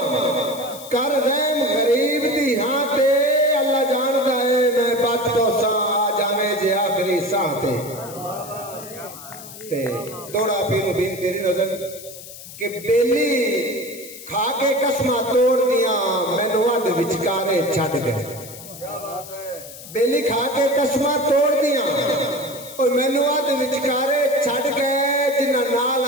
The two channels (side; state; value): left; noise; hiss, 15 dB below the sound